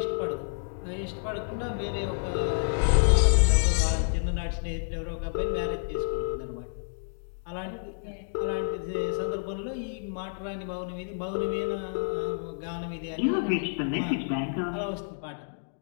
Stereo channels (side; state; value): right; silent; digital silence